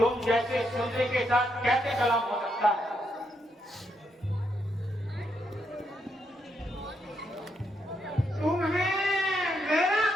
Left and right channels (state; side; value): normal; both; correlation 0.79